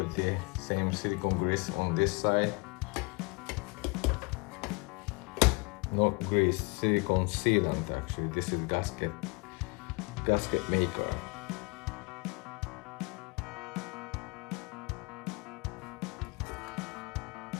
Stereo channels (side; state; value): right; quieter; 27.7 dB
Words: the same silicone grease on this side. not grease, silicone sealant actually. This is gasket maker.